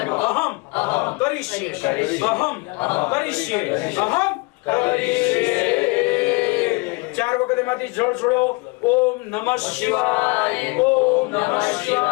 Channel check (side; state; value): right; quieter; 28.0 dB